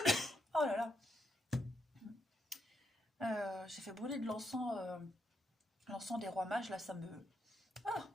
Oh là là, j'ai fait brûler de l'encens, l'encens des rois mages, là ça me... Ah.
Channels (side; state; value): both; normal; correlation 0.79